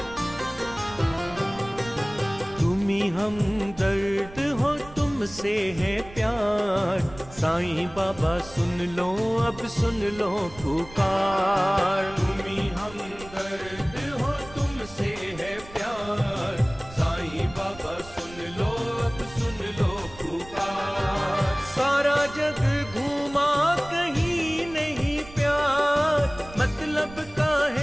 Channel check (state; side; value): noise; right; rumble, 18 dB below the sound